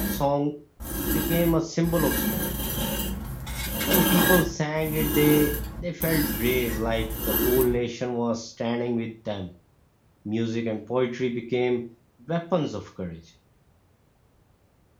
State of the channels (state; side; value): identical; both; correlation 1.00